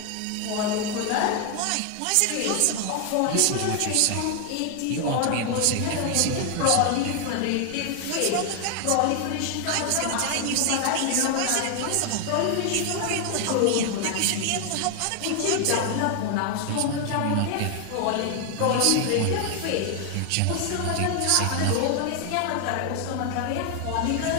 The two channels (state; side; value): different; both; correlation 0.00